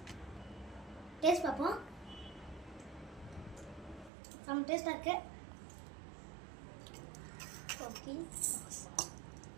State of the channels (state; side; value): drops out; left; at 4.1 s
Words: டேஸ்ட் பார்ப்போம். சம் டேஸ்ட் இருக்கு. ஓகே